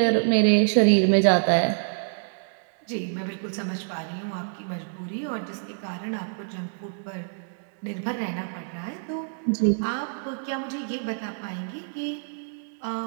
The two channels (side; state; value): left; silent; digital silence